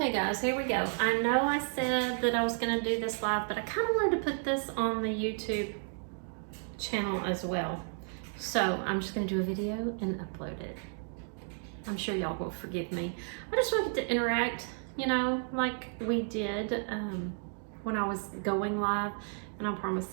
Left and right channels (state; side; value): silent; left; 56 dB below the other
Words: guys, here we go. I know I said that I was gonna do this live, but I kind of wanted to put this on the YouTube channel as well. So I'm just gonna do a video and upload it. I'm sure y'all will forgive me. I just wanted to interact, you know, like we did when I was going live, and I